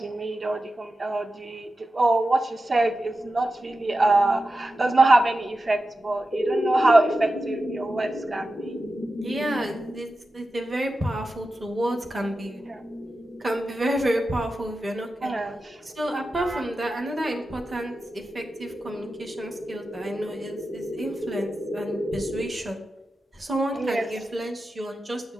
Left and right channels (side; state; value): both; normal; correlation 0.92